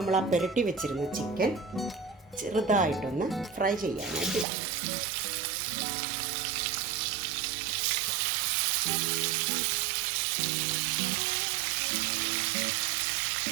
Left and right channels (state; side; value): drops out; left; at 4.5 s